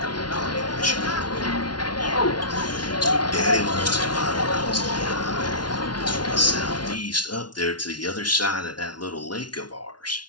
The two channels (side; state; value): right; late; 0.70 ms